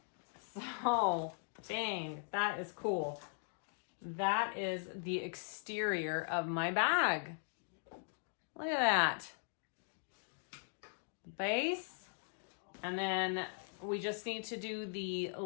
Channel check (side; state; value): right; silent; digital silence